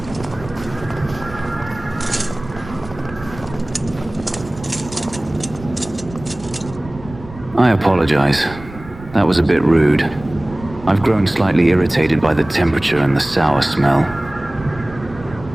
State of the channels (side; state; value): right; noise; rumble, 16 dB below the sound